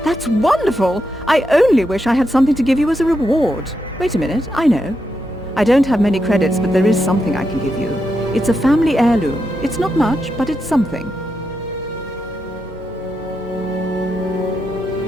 That's wonderful! I only wish I had something to give you as a reward. Wait a minute, I know. I don't have many credits, but there is something I can give you. It's a family heirloom. It's not much, but it's something.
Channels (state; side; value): normal; both; correlation 0.84